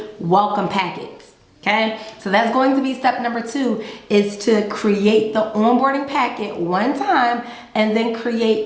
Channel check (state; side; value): identical; both; correlation 1.00